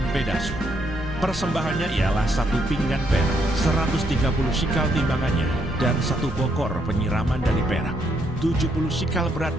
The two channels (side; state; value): both; normal; correlation 0.74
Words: Pedasur. Persembahannya ialah 1 pinggan perak, 130 shikal timbangannya, dan 1 bokor penyiraman dari perak, 70 shikal